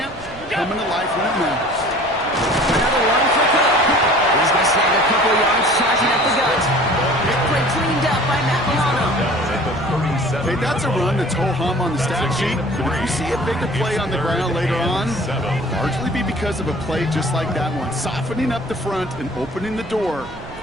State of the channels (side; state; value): right; noise; rumble, 18 dB below the sound